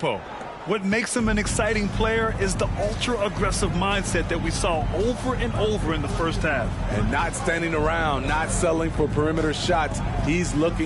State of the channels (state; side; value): identical; both; correlation 1.00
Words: What makes him an exciting player is the ultra-aggressive mindset that we saw over and over in the first half. And not standing around, not settling for perimeter shots. He's